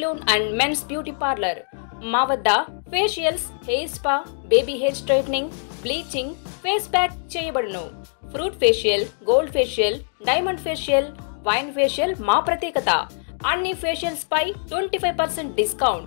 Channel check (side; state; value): right; silent; digital silence